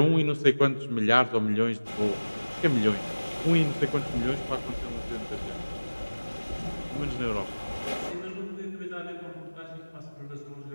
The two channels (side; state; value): both; inverted; correlation -1.00